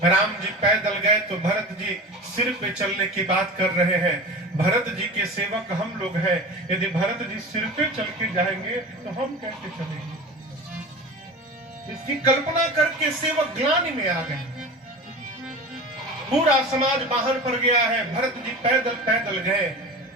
राम जी पैदल गए तो भरत जी सिर पे चलने की बात कर रहे हैं। भरत जी के सेवक हम लोग हैं, यदि भरत जी सिर पे चल के जाएंगे तो हम कैसे चलेंगे? इसकी कल्पना करके सेवक ग्लानि में आ गए। पूरा समाज बाहर पर गया है, भरत जी पैदल पैदल गए।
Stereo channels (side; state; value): both; normal; correlation 0.32